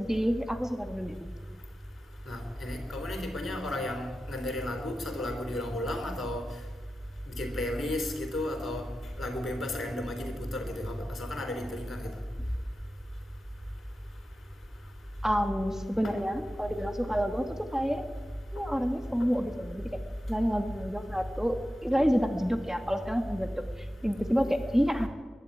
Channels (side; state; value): both; normal; correlation 0.93